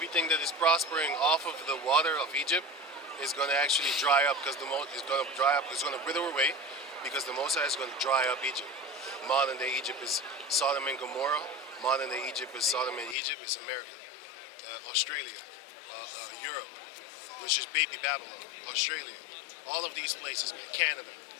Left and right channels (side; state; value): right; drops out; at 13.2 s